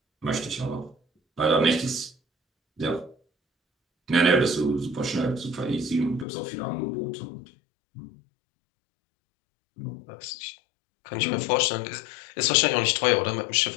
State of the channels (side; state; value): right; drops out; at 6.2 s